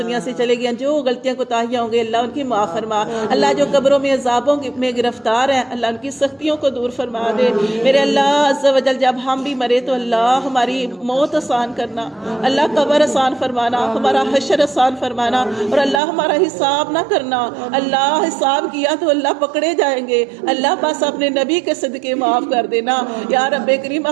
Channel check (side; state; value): left; drops out; at 16.0 s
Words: سے چلے گئے، جو غلطیاں کوتاہیاں ہوں گے اللہ ان کی معاف فرما، اللہ جو قبروں میں عذابوں میں گرفتار ہیں اللہ ان کی سختیوں کو دور فرما دے میرے اللہ عز و جل۔ جب ہم بھی مرے تو اللہ ہماری موت آسان کرنا، اللہ قبر آسان فرمانا، ہمارا حشر آسان فرمانا، اور اللہ ہمارا حساب نہ کرنا، اللہ حساب کیا تو اللہ پکڑے جائیں گے، اللہ بس اپنے نبی کے صدقے معاف کر دینا یا رب کریم،